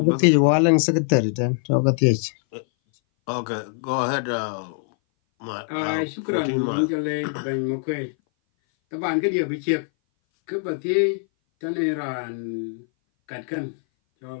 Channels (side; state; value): right; silent; 59 dB below the other